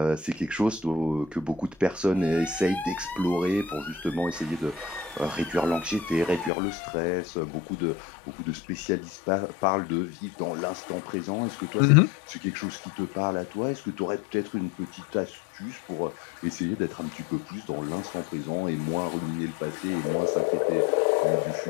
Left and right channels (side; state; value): right; drops out; at 6.5 s